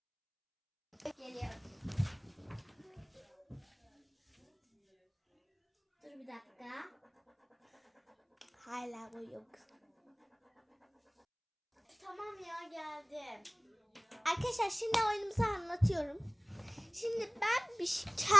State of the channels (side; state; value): both; identical; correlation 1.00